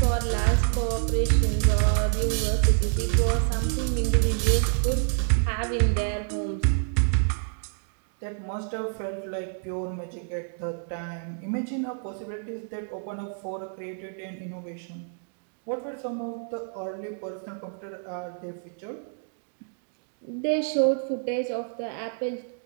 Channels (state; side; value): silent; left; 59 dB below the other